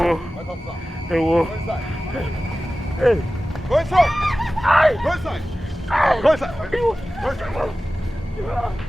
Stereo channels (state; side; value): normal; both; correlation 0.96